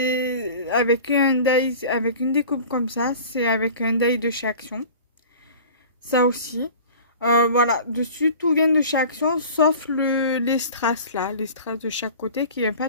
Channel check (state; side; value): inverted; both; correlation -0.41